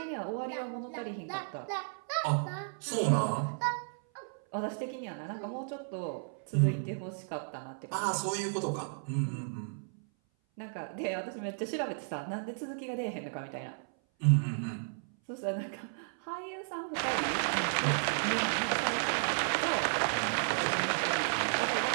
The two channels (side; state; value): left; silent; 55 dB below the other